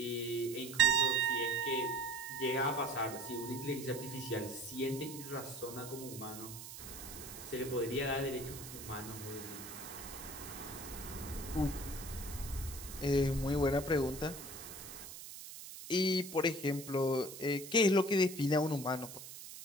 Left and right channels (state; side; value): noise; right; hiss, 12 dB below the sound